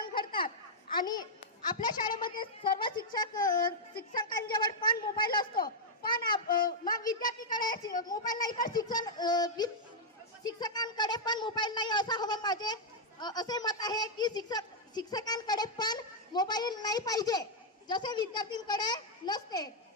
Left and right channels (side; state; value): both; normal; correlation -0.04